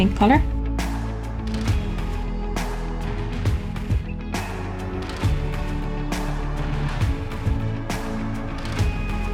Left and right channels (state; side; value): identical; both; correlation 1.00